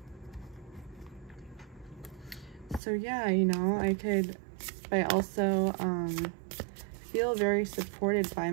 So yeah, you know, I also feel very supported by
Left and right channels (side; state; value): left; drops out; at 2.8 s